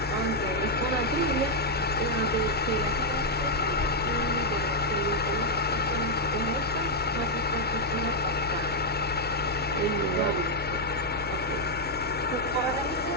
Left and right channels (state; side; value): normal; both; correlation -0.01